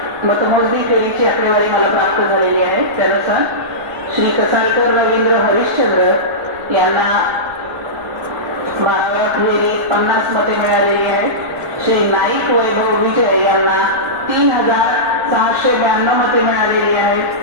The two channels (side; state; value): right; noise; rumble, 25 dB below the sound